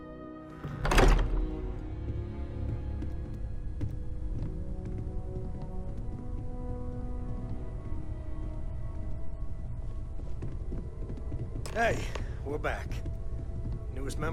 Hey, we're back. Newest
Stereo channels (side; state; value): both; identical; correlation 1.00